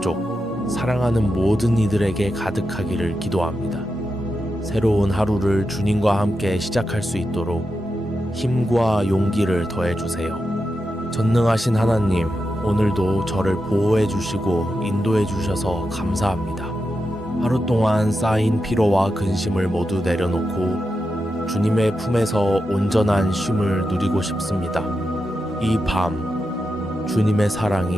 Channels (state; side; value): normal; both; correlation 0.88